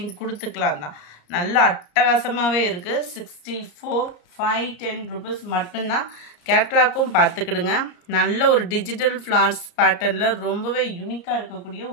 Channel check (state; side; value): late; right; 34 ms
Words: கொடுத்துக்கலாம் தான். நல்ல அட்டகாசமாகவே இருக்குது. 64, 510 rupees மட்டும்தான். கேட்லாக்கும் பார்த்துக்கிடுங்க. நல்ல ஒரு டிஜிட்டல் ஃப்ளார்ஸ் பேட்டர்னில் ரொம்பவே யூனிக்காக இருக்கக்கூடிய